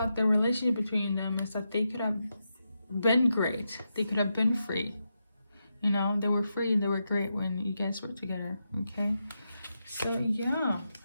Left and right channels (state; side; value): inverted; both; correlation -0.86